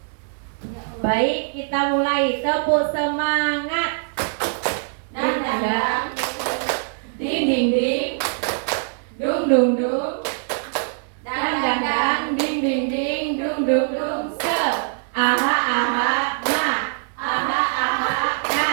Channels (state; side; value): silent; left; digital silence